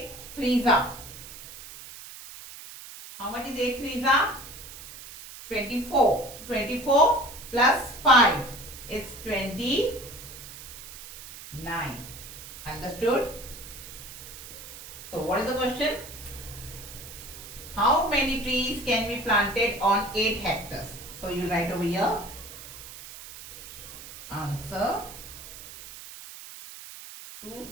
threes are. How much is 8 threes are? 24. 24 plus 5 is 29. Understood? So, what is the question? How many trees can be planted on 8 hectares? So, you write over here. Answer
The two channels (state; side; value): noise; right; hiss, 14 dB below the sound